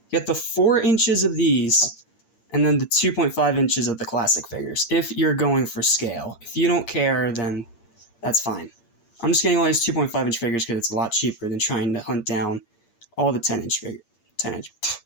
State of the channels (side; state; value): right; late; 8.6 ms